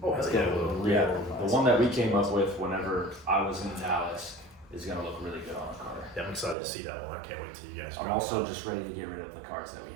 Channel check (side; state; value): left; drops out; at 6.6 s